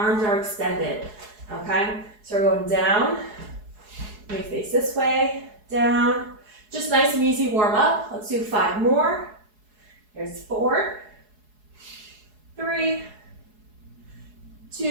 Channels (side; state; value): left; late; 4.7 ms